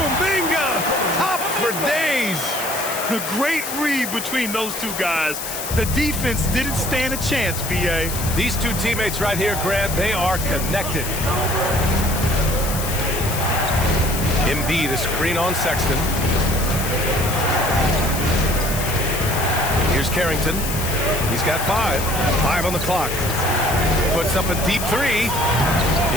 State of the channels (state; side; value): noise; left; hiss, 6 dB below the sound